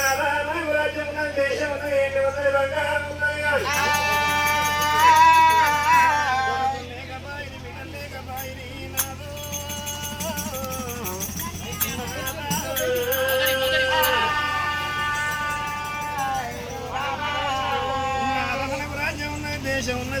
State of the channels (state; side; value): identical; both; correlation 1.00